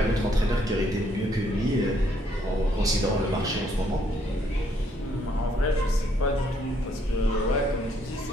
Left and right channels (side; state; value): both; normal; correlation 0.70